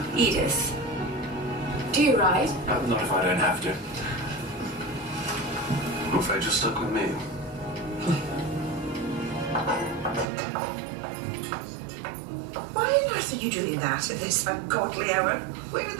Edith? Do you ride? Not if I don't have to. I'm afraid you're stuck with me. Why on earth are you doing that at this ungodly hour? Where are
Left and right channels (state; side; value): drops out; left; at 10.2 s